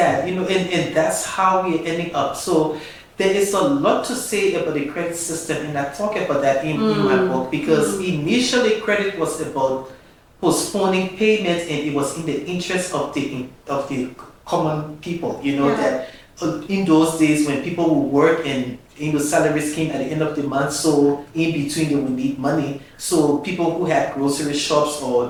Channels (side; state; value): both; identical; correlation 1.00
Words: You know, and that's how we're ending up. So there is a lot to say about the credit system, and I talk about that in my book because initially credit was about postponing payment, and it was in the interest of the common people. You know that in those days when people would work and salaries came at the end of the month, so in between they would need money. So people who had grocery shops